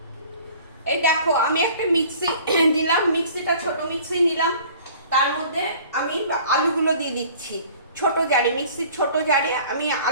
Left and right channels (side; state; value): both; inverted; correlation -0.49